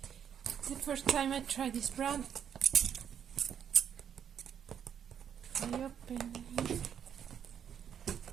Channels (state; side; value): quieter; left; 8.5 dB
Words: the first time I try this brand. I open it.